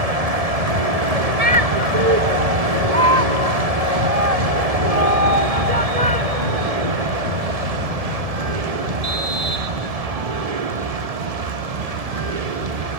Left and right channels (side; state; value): left; late; 1.7 ms